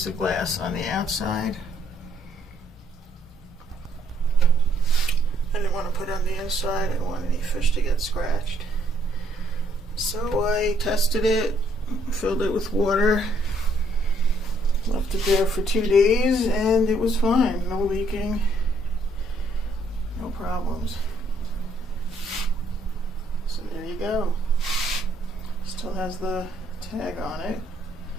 of glass on the outside. I didn't want to put it on the inside. I didn't want any fish to get scratched. So I tested it, filled it with water, left it there for 2 days, and it was fine. No leaking, no problems. So there you go. Still has the tag on it.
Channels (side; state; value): both; normal; correlation 0.68